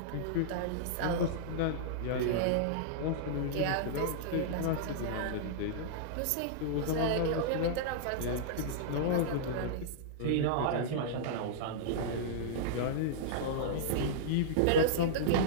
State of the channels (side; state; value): both; different; correlation -0.02